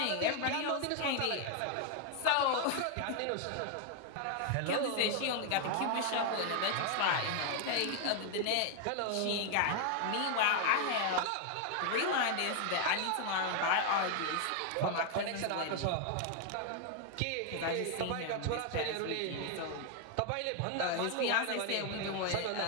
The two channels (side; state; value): both; different; correlation 0.00